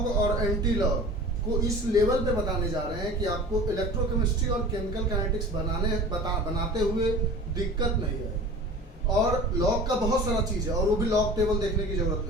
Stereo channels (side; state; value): both; normal; correlation 0.39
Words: और एंटी लॉग को इस लेवल पे बताने जा रहे हैं कि आपको इलेक्ट्रोकेमिस्ट्री और केमिकल काइनेटिक्स बनाते हुए दिक्कत नहीं है। और लॉग का बहुत सारा चीज़ है, और वो भी लॉग टेबल देखने की जरूरत